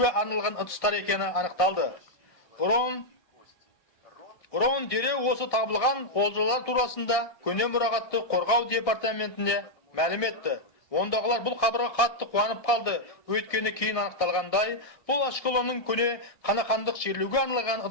арналған ыдыстар екені анықталды. Рон дереу осы табылған олжалар турасында көне мұрағатты қорғау департаментіне мәлім етті. Ондағылар бұл хабарға қатты қуанып қалды. Өйткені кейін анықталғандай, бұл Ашкелонның көне қанақандық жерлеуге арналған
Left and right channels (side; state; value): right; late; 1.6 ms